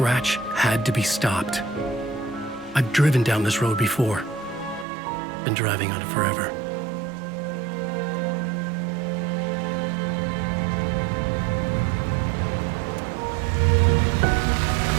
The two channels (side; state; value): left; drops out; at 4.9 s